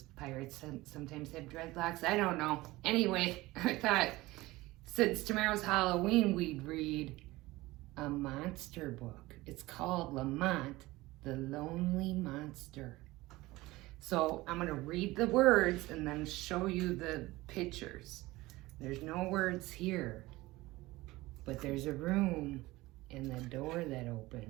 pirates sometimes have dreadlocks. I don't know. Anyway, I thought since tomorrow's Halloween, we'd read a monster book. It's called Lamont, the Lonely Monster. So I'm going to read the words and then show you the pictures. There's no words here, but there's a room and the door that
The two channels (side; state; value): left; quieter; 19.5 dB